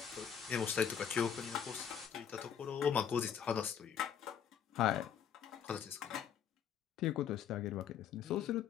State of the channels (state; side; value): quieter; right; 8.3 dB